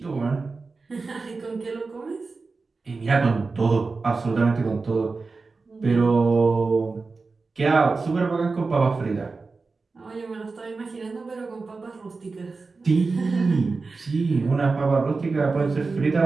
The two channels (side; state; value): left; quieter; 4.1 dB